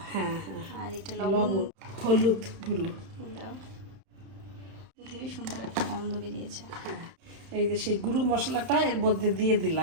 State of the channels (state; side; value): late; left; 31 ms